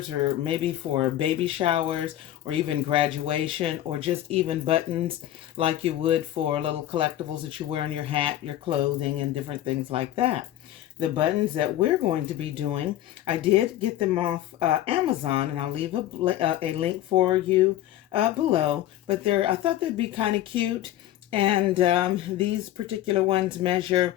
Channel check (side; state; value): right; quieter; 13.2 dB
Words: or maybe for baby showers, or even graduation, or just even buttons like you would for little collectibles that you wear on your hat, your clothing, and different things like that. The buttons that we're going to be doing, I did get them off Amazon, and I'll leave a link for you below. But I thought they'd be kind of cute. And these particular ones measure